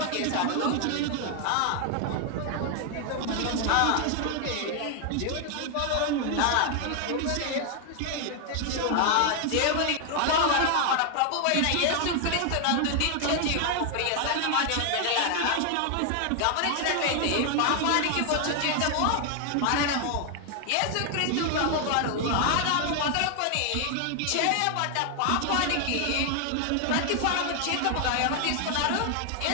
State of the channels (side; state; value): both; different; correlation 0.00